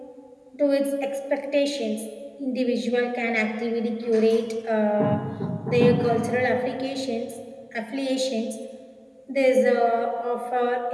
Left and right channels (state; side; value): identical; both; correlation 1.00